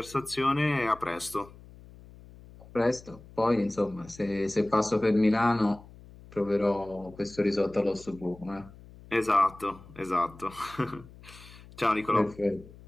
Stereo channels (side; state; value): left; noise; hum, 20 dB below the sound